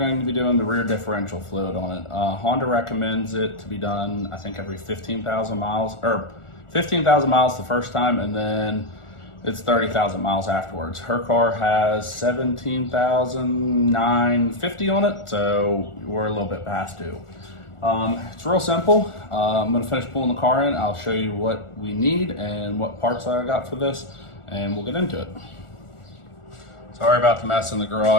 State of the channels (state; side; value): late; right; 1.4 ms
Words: to be doing the rear differential fluid on it. Honda recommends it to be done, I think, every 15,000 miles, or 15,000 miles the first time, and then it's 30,000 miles afterwards. Her car has 17,950 on it, so we're a little bit past due. It's real simple. I'm gonna finish pulling the car in. I'll show you what we need and what parts I got for this, and we'll get into it. Sorry about the mess in the